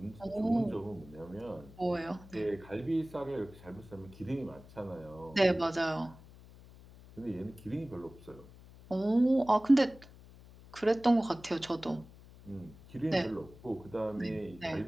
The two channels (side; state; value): left; noise; hum, 20 dB below the sound